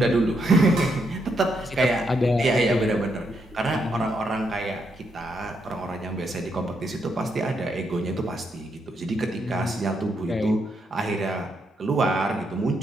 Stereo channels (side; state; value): both; normal; correlation 0.78